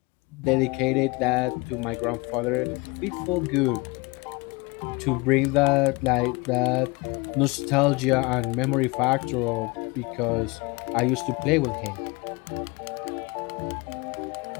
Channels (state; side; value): quieter; right; 25.9 dB